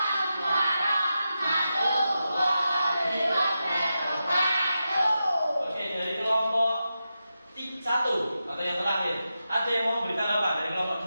warahmatullahi wabarakatuh. Oke, dari kelompok 1 atau yang terakhir, ada yang mau memberi tanggapan dari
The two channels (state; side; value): inverted; both; correlation -0.90